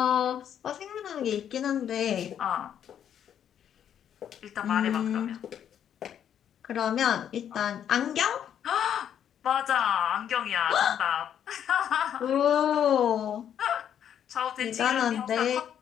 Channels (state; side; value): quieter; right; 9.3 dB